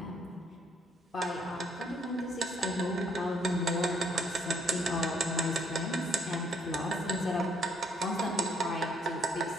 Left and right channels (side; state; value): both; normal; correlation 0.67